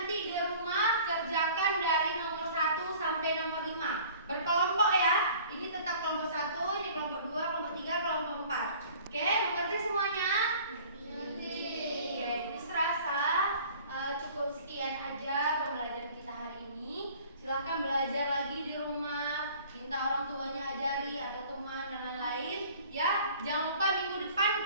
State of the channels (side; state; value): both; inverted; correlation -0.49